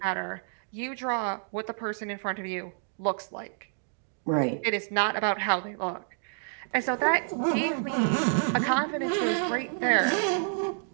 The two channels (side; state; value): left; silent; digital silence